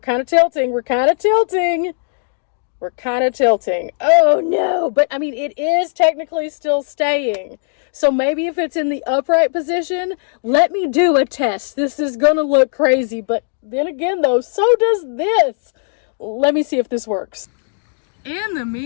tilting. We're kind of tilting. We're kind of tilting. Oh no, but I mean, it is technically still staying. So maybe if it's in the upright position, let me do a test. This is gonna look crazy, but then again though, so does this. Let me see if this works. In the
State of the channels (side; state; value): right; silent; digital silence